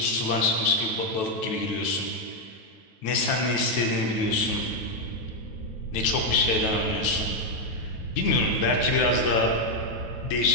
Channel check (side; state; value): right; late; 9.2 ms